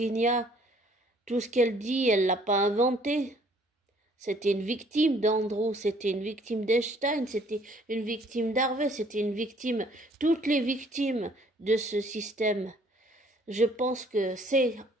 tout ce qu'elle dit, elle l'a pas inventé. C'était une victime d'Andrew, c'était une victime d'Einstein, c'était une victime d'Harvey, c'était une victime, toutes les victimes de ce système. Je pense que c'est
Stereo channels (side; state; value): both; normal; correlation 0.60